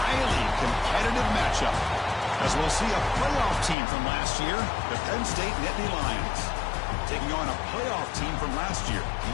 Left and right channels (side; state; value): right; drops out; at 3.8 s